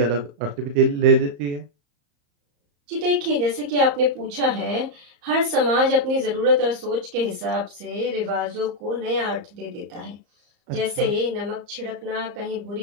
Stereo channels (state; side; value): late; left; 34 ms